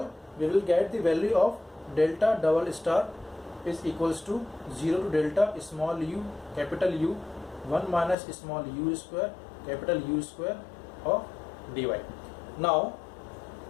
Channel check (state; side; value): drops out; right; at 8.2 s